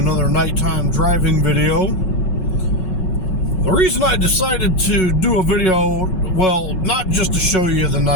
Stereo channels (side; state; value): right; late; 5.4 ms